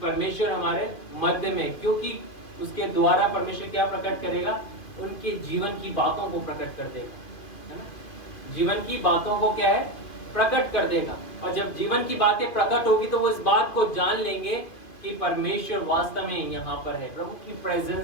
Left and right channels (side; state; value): right; late; 2.5 ms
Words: हमारे मध्य में, क्योंकि उसके द्वारा परमेश्वर क्या प्रकट करेगा, उनके जीवन की बातों को प्रकट कर देगा, है ना। जीवन की बातों को क्या है, प्रकट कर देगा। और जब जीवन की बातें प्रकट होगी तो वो इस बात को जान लेंगे कि परमेश्वर वास्तव में यहाँ पर है, प्रभु की